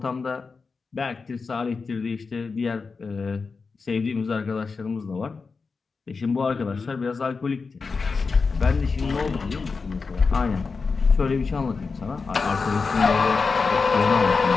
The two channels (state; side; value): quieter; right; 4.7 dB